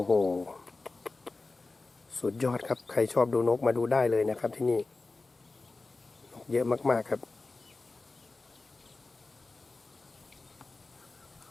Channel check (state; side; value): quieter; right; 3.5 dB